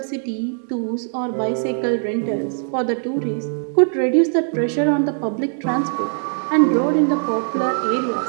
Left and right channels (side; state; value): left; silent; digital silence